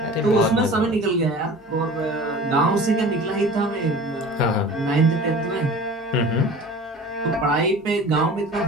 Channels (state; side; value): normal; both; correlation 0.40